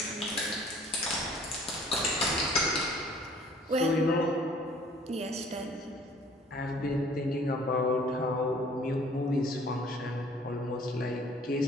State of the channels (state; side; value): normal; both; correlation 0.53